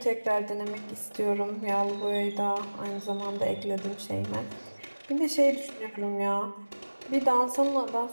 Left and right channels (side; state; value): both; inverted; correlation -1.00